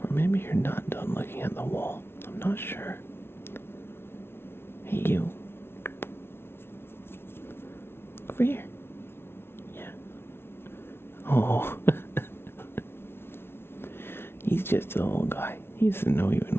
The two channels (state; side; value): late; right; 0.12 ms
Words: Or maybe you're not done looking at the wall. I'm not sure. Hey you. Over here. Yeah, Oh. He's just a little guy. He doesn't know even